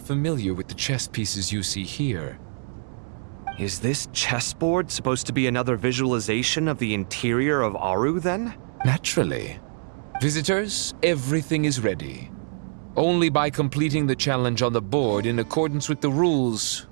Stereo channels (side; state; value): left; silent; digital silence